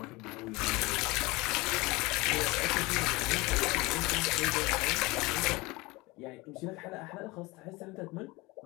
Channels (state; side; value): quieter; right; 22.9 dB